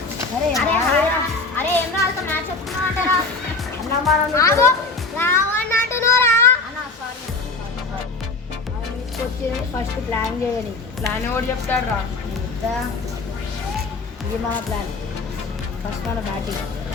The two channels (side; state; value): right; quieter; 3.7 dB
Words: అరే అరే ఏం రాదు, మ్యాచ్ చెప్తున్నా అంటారా? అన్న మనం రావని అంటున్నారా? వచ్చి ఫస్ట్ ప్లాన్ చేయని. ప్లాన్ ఎవరు చెప్తాడు రా? ఇది మన ప్లాన్. ఫస్ట్ మన బ్యాటింగ్.